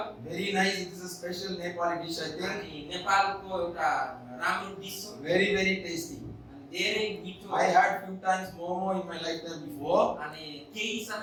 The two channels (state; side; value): identical; both; correlation 1.00